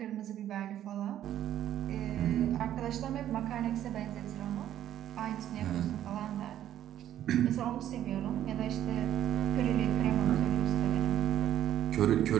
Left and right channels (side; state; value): left; quieter; 11.5 dB